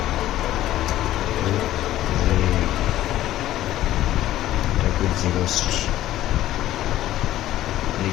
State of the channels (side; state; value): right; quieter; 13.9 dB